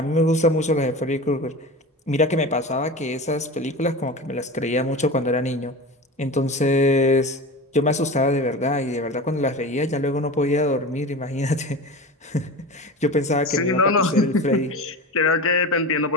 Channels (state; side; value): normal; both; correlation 0.30